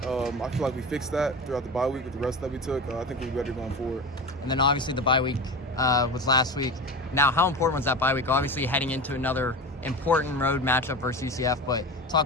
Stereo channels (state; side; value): normal; both; correlation 0.27